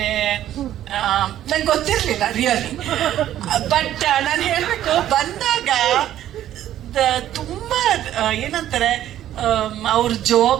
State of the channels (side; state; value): left; quieter; 12.2 dB